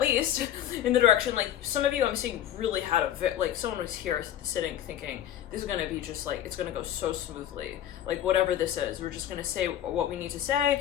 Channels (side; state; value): right; quieter; 11.2 dB